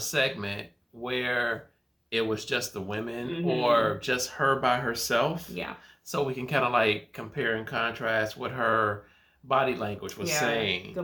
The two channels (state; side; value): identical; both; correlation 1.00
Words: where it was just the women or just her by herself. Yeah. So we can kind of like compare and contrast what her body language was saying.